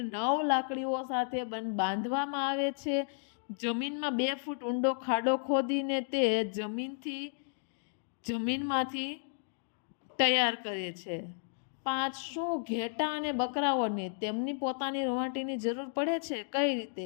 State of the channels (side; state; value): right; silent; digital silence